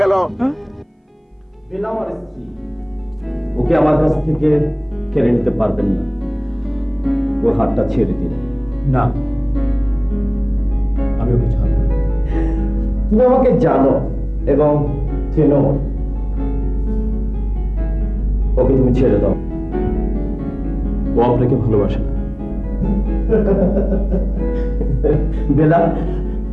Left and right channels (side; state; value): both; identical; correlation 1.00